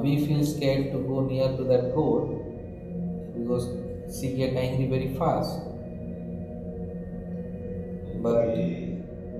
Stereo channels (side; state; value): both; identical; correlation 1.00